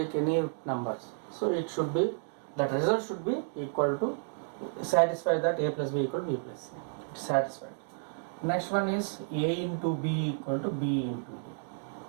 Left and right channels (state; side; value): silent; left; digital silence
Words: any numbers. So it should be, that result should be equal to, satisfy that A plus B equal to B plus C. It's satisfied. Next one is A into B equal to B into